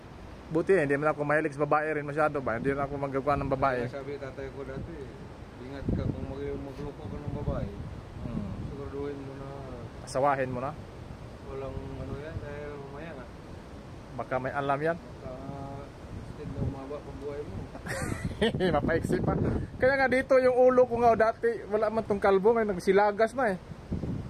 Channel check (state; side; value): identical; both; correlation 1.00